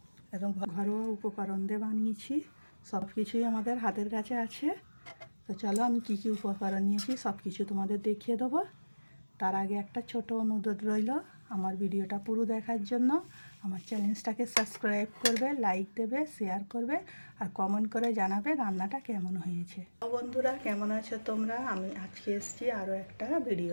এবং ঘরোয়া উপকরণ দিয়ে বানিয়েছি। সব কিছুই আমাদের হাতের কাছে আছে। তো চলো আমি কী কী উপকরণ নিয়েছি সব কিছু তোমাদের দেখিয়ে দেবো। তার আগে একটা ছোট অনুরোধ রইল, আমার ভিডিওটা পুরো দেখার জন্য আমার চ্যানেলটাকে সাবস্ক্রাইব করবে, লাইক দেবে, শেয়ার করবে আর কমেন্ট করে জানাবে রান্নাটা কেমন হয়েছে। তো বন্ধুরা, কেমন আছো তোমরা? আমি আজকে এসেছি আরও একটা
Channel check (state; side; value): inverted; both; correlation -1.00